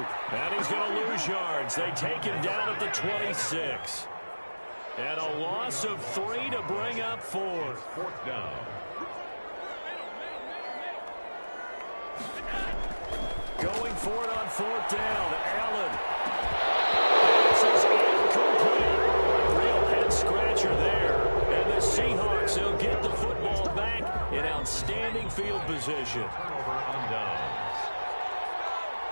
And he's going to lose yards. They take him down at the 26. And a loss of 3 to bring up 4. Fourth down. Going for it on fourth down. Allen. This is incomplete. Real head-scratcher there. And the Seahawks will get the football back in outstanding field position. Turnover on downs.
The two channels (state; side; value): inverted; both; correlation -1.00